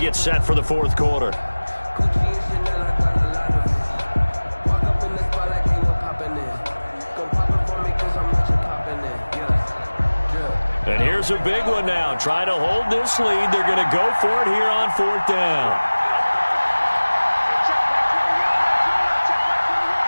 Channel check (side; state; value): both; inverted; correlation -1.00